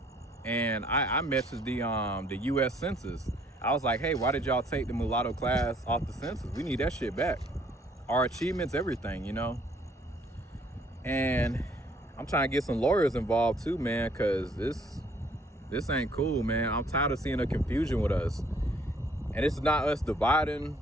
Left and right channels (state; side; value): normal; both; correlation 0.62